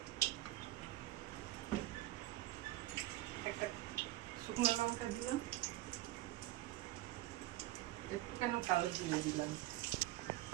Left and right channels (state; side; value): quieter; left; 16.1 dB